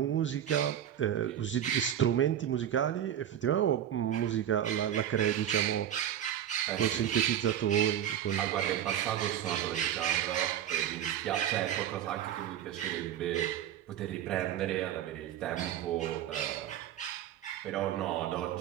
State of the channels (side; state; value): left; quieter; 10.5 dB